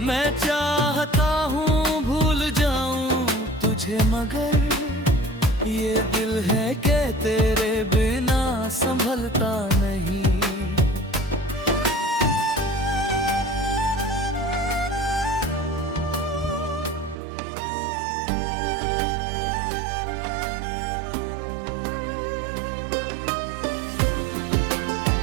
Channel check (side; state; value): left; drops out; at 17.2 s